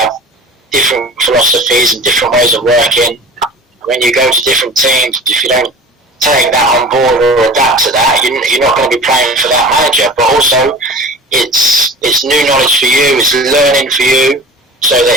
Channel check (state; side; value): normal; both; correlation 0.38